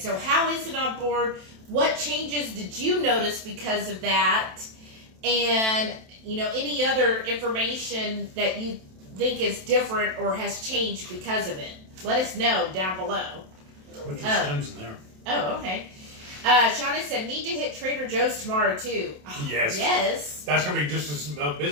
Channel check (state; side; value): late; left; 27 ms